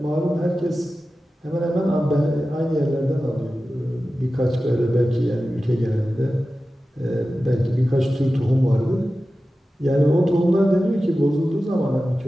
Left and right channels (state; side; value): normal; both; correlation 0.94